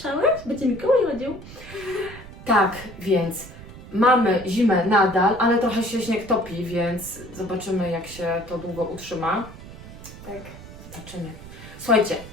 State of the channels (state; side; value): noise; right; rumble, 16 dB below the sound